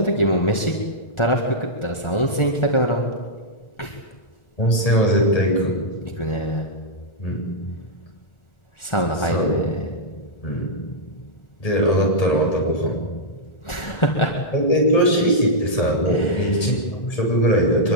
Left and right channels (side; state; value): right; late; 1.4 ms